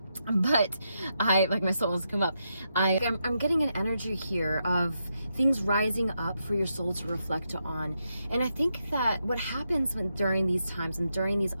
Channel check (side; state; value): both; inverted; correlation -0.83